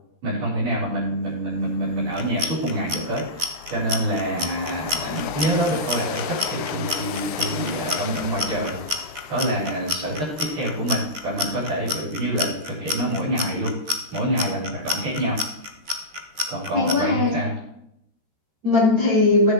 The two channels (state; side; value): late; left; 13 ms